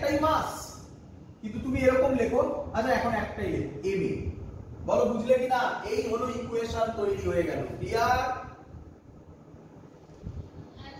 মাস, কিন্তু তুমি এরকম লেখো, আচ্ছা এখন একটাই লেখো ma। বলো বুঝলে কি না? এই হলো ইকুয়েশন তৈরি হয়ে গেল। ক্লিয়ার?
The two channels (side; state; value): both; identical; correlation 1.00